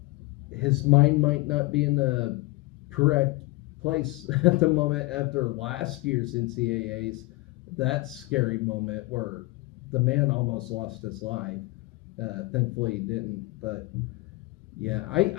His mind might not be in the correct place at the moment after last year's NCAAs. That scary moment where the man almost lost his life. Thankfully he didn't. But yeah,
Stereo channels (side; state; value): right; quieter; 22.3 dB